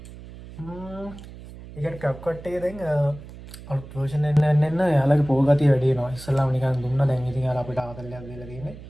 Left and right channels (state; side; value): noise; right; hum, 16 dB below the sound